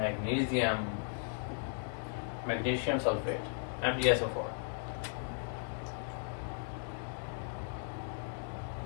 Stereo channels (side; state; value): right; silent; digital silence